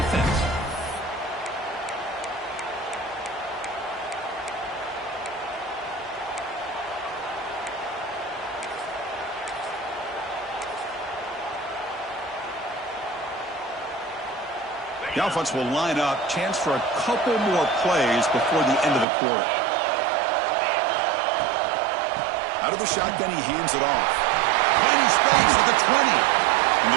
The offense will line up. Chance for a couple more plays before the end of the quarter. Out of the shotgun, he hands it off. Plenty space at the 20. And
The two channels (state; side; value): drops out; left; at 19.1 s